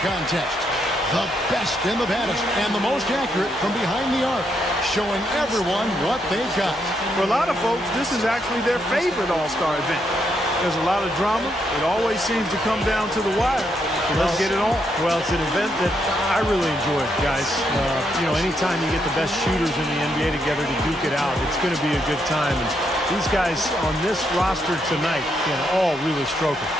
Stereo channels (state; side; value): normal; both; correlation 0.78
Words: contest. The best and the baddest and the most accurate from behind the arc, showing everyone what they've got. For a lot of folks, this is actually their favorite All-Star event. There's a lot of drama. It always seems to come down to the wire. So let's get it on. Well, it's an event that I really enjoy, guys. Anytime you get the best shooters in the NBA together to duke it out, it's going to be a good time. And these guys on this roster tonight can all really stroke it.